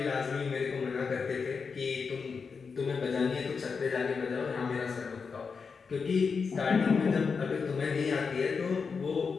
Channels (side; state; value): right; quieter; 5.3 dB